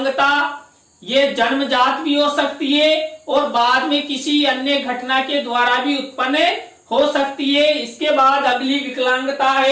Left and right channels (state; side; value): identical; both; correlation 1.00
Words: ये जन्मजात भी हो सकती है और बाद में किसी अन्य घटना के द्वारा भी उत्पन्न हो सकती है। इसके बाद अगली विकलांगता